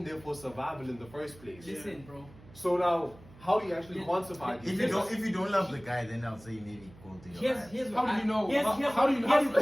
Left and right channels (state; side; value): noise; right; hum, 22 dB below the sound